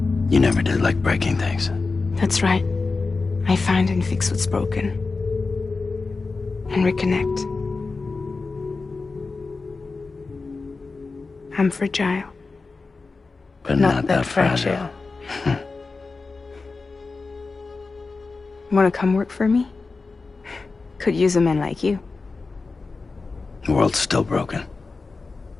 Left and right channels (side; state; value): right; quieter; 4.0 dB